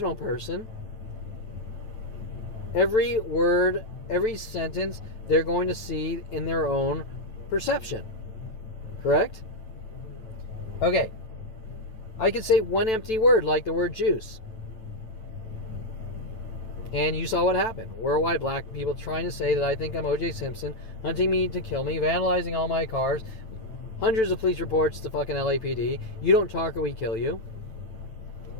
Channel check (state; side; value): late; right; 9.1 ms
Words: person, every word, every sentence, they're going to see in their own perception. Correct? Okay, I could say one empty word, like the word juice. And you saw what happened. Worldwide black people trying to say that I think I'm O.J. Simpson, hunting me to kill me, vandalizing all my cars, hundreds of police reports to fucking LAPD. You don't talk or we kill you.